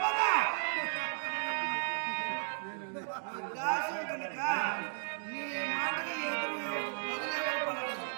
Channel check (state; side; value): silent; left; digital silence